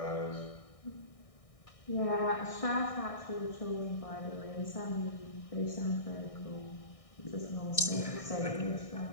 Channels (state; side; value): late; right; 1.6 ms